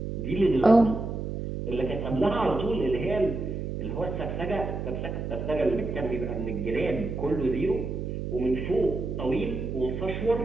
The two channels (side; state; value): right; noise; hum, 4 dB below the sound